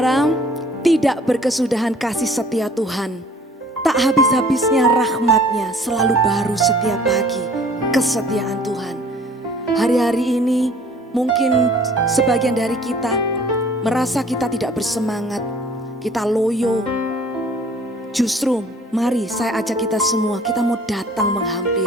tidak berkesudahan kasih setia Tuhan. Tak habis-habisnya rahmatnya, selalu baru setiap pagi kesetiaan Tuhan. Hari-hari ini mungkin sebagian dari kita merasa kita tidak bersemangat, kita loyo. Justru mari saya ajak kita semua, kita mau datang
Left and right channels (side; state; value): both; normal; correlation 0.52